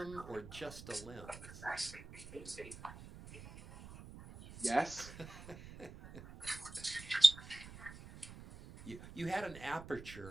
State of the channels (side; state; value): right; noise; rumble, 15 dB below the sound